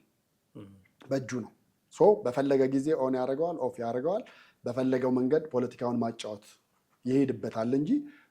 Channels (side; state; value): both; identical; correlation 1.00